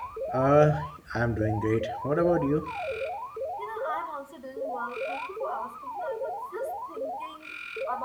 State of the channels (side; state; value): both; identical; correlation 1.00